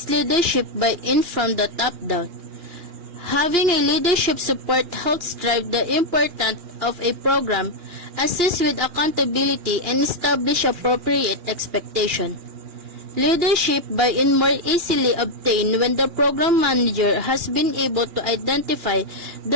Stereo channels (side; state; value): left; late; 2.4 ms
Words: leadership buy-in from the top down. Having a leadership support helps drive the importance of a program, assist with accountability, and establish appropriate expectation. Leadership buy-in more easily obtained when the program manager has been able to identify